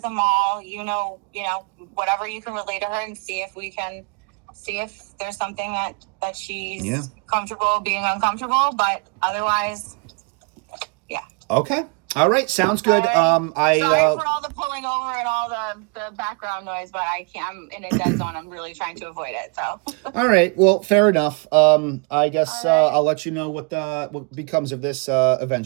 Amal. Whatever you can relate to her, and see if there's something that she's comfortable being uncomfortable. But otherwise, yeah. Okay. All right. Sounds good. Sorry for all the pulling over and all the background noise, but I'm in a dead zone. I'm really trying to avoid it. So. All right. Well, fair enough. I guess All right. I'll let you know what becomes of this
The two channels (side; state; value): left; quieter; 34.5 dB